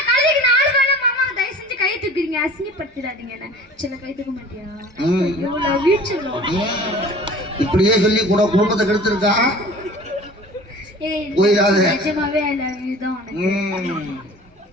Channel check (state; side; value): normal; both; correlation 0.43